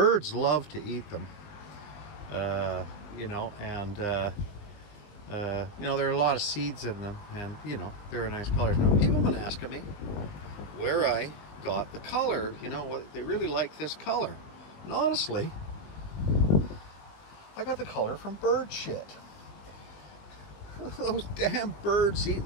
love to eat them. There are a lot of seeds in them, and they're a nice color. Now, people have been asking me where I got the color. They really like this color. And honestly, I got the color from bird shit. Those damn birds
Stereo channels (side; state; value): right; late; 20 ms